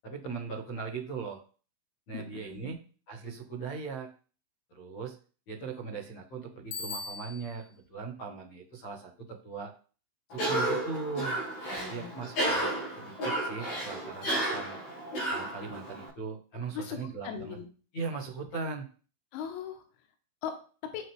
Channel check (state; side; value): late; right; 15 ms